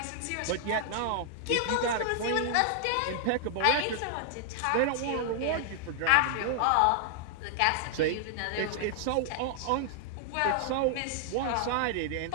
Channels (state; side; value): different; both; correlation -0.01